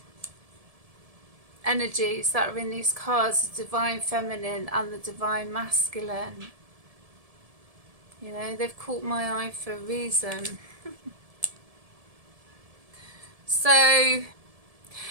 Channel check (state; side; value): late; left; 1.7 ms